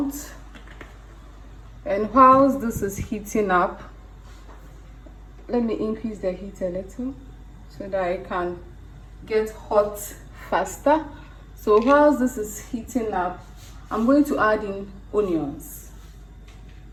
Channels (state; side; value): identical; both; correlation 1.00